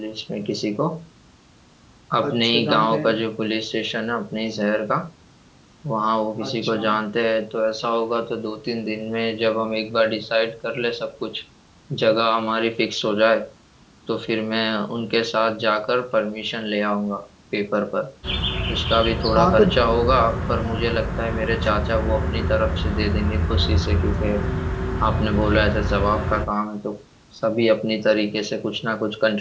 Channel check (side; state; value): both; identical; correlation 1.00